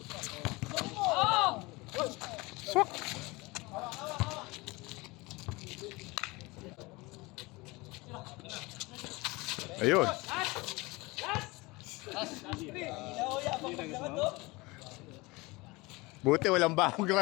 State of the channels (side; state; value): right; quieter; 23.6 dB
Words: Swak. Ayun. Buti walang bahong